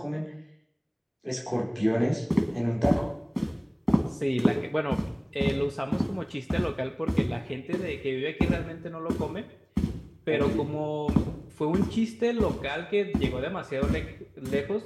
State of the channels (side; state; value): both; identical; correlation 1.00